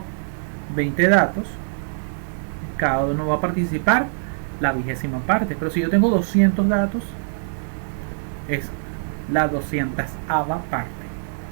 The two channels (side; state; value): left; silent; digital silence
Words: 20 datos, cada uno va a participar la 20ª parte, pero si yo tengo 200 datos, es la 200ª parte.